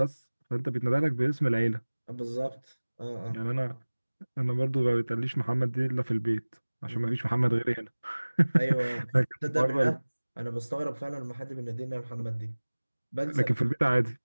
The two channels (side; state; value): both; inverted; correlation -1.00